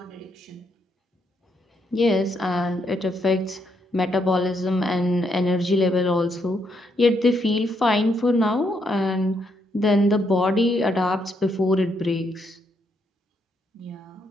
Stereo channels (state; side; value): normal; both; correlation 0.76